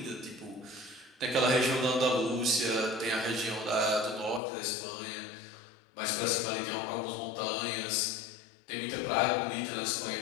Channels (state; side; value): drops out; right; at 4.4 s